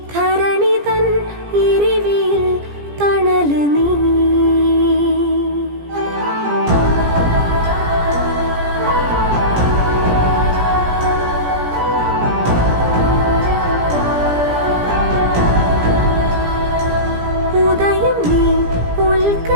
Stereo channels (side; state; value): left; late; 17 ms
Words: ധരണി തൻ ഇരിവിൽ തണല് നീ ഉദയം നീ ഉൽക്ക